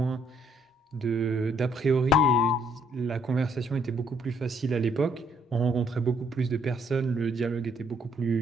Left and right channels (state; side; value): normal; both; correlation 0.68